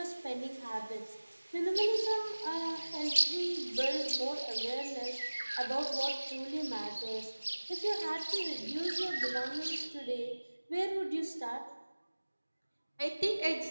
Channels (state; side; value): inverted; both; correlation -1.00